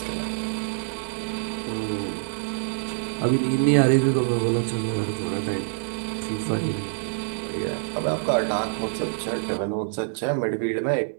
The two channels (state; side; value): silent; left; digital silence